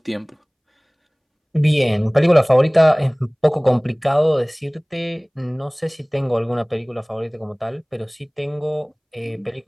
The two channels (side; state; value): both; identical; correlation 1.00